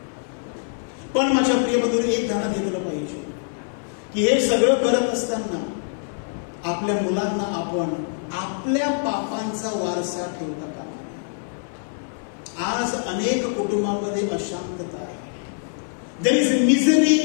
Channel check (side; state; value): right; silent; 61 dB below the other